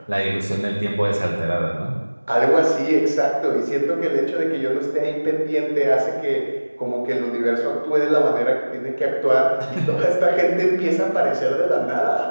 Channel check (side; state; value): both; inverted; correlation -1.00